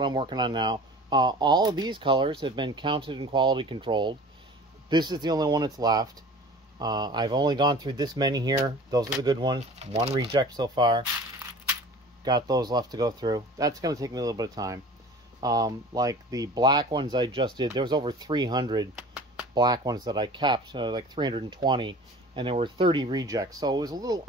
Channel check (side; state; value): both; normal; correlation 0.42